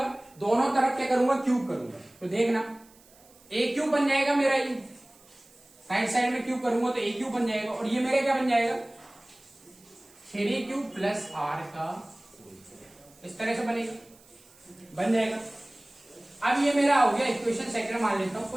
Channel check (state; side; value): noise; right; hiss, 27 dB below the sound